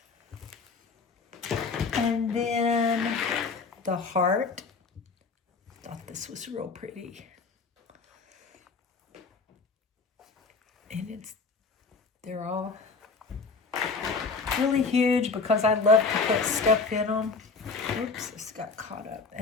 And then the heart. Thought this was real pretty. And they're all really huge because I love to put stuff in them. Oops, this got caught up.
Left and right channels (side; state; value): right; quieter; 4.4 dB